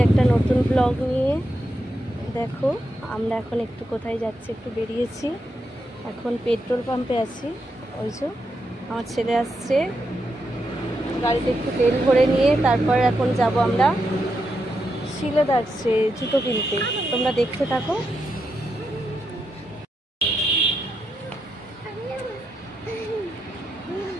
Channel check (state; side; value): normal; both; correlation 0.84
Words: একটা নতুন ব্লগ নিয়ে। দেখো আমরা এখন একটু কোথায় যাচ্ছি, একটু বেরিয়েছি। এখন পেট্রোল পাম্পে আছি। ওই যে আমার ছেলে আসছে, গাড়িতে একটু তেল ভরে নিয়ে তারপর এখন যাব আমরা শিলেদার্সে জুতো কিনতে। তোমরা দেখতে থাকো।